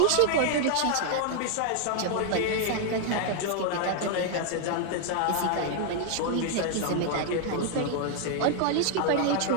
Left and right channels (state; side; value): different; both; correlation 0.00